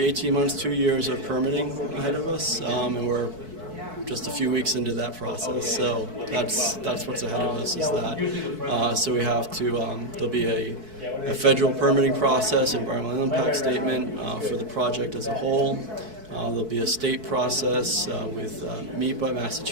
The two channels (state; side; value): late; left; 4.6 ms